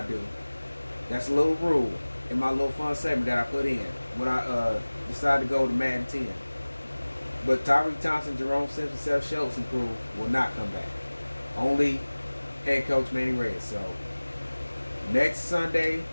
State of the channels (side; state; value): both; inverted; correlation -1.00